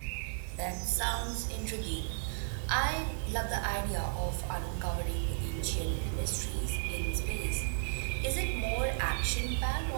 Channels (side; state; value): left; silent; digital silence